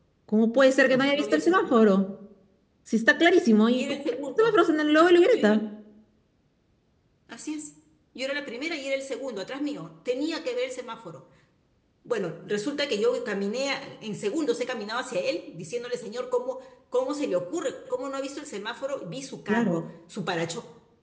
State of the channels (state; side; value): identical; both; correlation 1.00